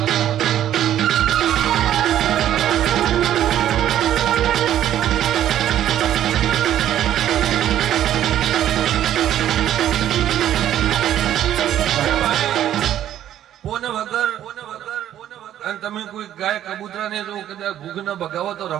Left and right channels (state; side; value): quieter; left; 11.5 dB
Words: અને તમે કોઈ ગાય કબૂતરા ને જો કદાચ ભૂખ ન ભગાવો તો